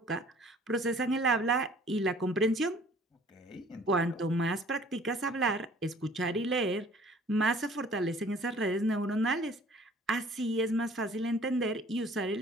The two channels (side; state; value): both; normal; correlation 0.53